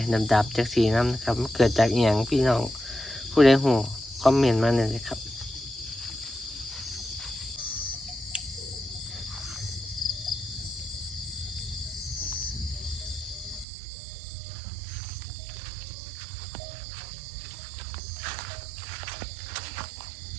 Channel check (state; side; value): drops out; left; at 13.7 s